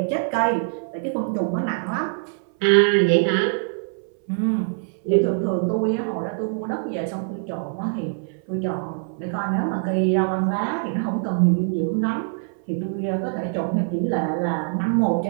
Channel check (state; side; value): silent; left; 59 dB below the other